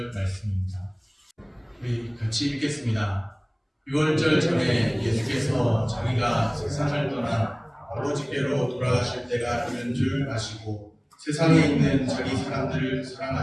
말씀입니다. 우리 같이 읽겠습니다. 6월절 전에 예수께서 자기가 세상을 떠나 아버지께로 돌아가실 때가 이른 줄 아시고 세상에 있는 자기 사람들을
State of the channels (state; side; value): identical; both; correlation 1.00